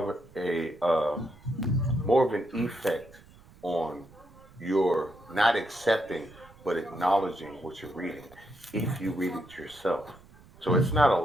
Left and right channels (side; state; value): right; noise; rumble, 24 dB below the sound